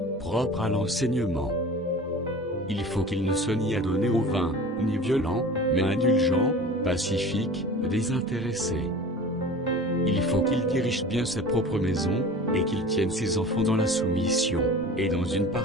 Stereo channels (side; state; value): both; normal; correlation 0.38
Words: propre à l'enseignement. Il faut qu'il ne soit ni adonné au vin, ni violent, mais indulgent, pacifique, désintéressé. Il faut qu'il dirige bien sa propre maison, et qu'il tienne ses enfants dans la soumission, et dans une